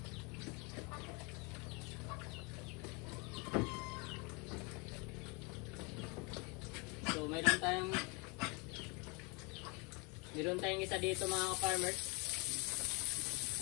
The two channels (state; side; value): quieter; right; 30.5 dB